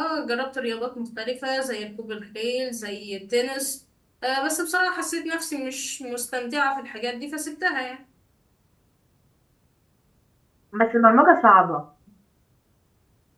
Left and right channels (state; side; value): identical; both; correlation 1.00